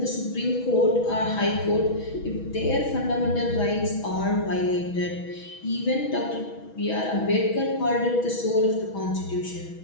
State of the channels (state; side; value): late; right; 6.2 ms